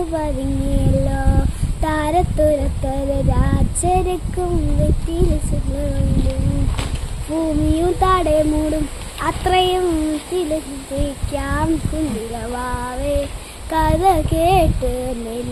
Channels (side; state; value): both; identical; correlation 1.00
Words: പതുങ്ങിയല്ലോ താരത്തുരത്തൊരു രാജരക്കും വെറ്റില് ചെല്ലും ഭൂമിയും താടെ മൂടും അത്രയും തിലക്കാം കുഞ്ഞിരവാവേ കഥ കേട്ട്